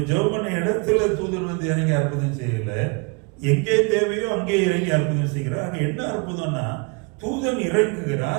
ஜெபம் பண்ண இடத்துல தூதன் வந்து இறங்கி அற்புதம் செய்யல. எங்கே தேவையோ அங்கே இறங்கி அற்புதம் செய்கிறார். அங்க என்ன அற்புதம்னா, தூதன்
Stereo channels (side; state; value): left; quieter; 32.2 dB